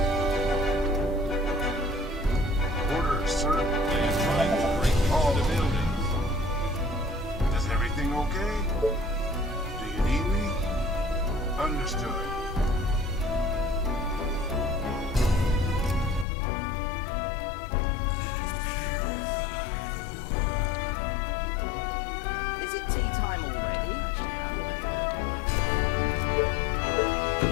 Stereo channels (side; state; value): right; drops out; at 16.2 s